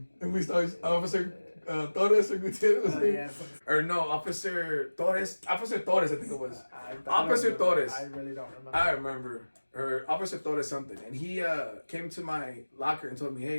And we started, Officer Torres or Gutierrez. Yeah. Or no, Officer Torres, I think it was. Officer Torres. I really don't remember. I remember. Or Officer Torres something. And he came to my locker and told me,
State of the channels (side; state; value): both; inverted; correlation -1.00